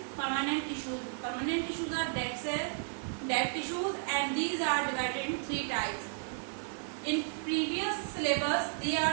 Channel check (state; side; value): silent; left; digital silence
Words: permanent tissues. Permanent tissues are dead cells, dead tissues and these are divided in 3 types. In previous syllabus they are